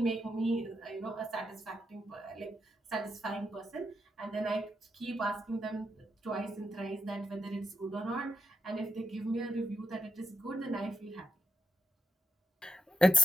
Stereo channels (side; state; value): both; normal; correlation 0.83